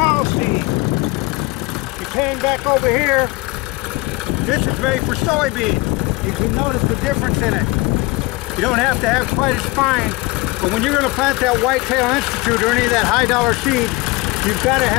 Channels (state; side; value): quieter; right; 22.7 dB